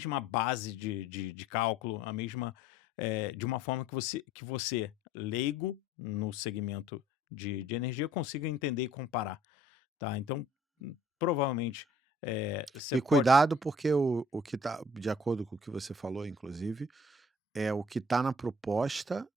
base de cálculo, a mesma, de uma forma que você, leigo no segmento de energia, consiga entender e comparar, tá. Então, provavelmente, você E pode cuidado, porque o que tá de acordo com o que você falou, inclusive, é o que tá na proposta,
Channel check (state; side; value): normal; both; correlation 0.55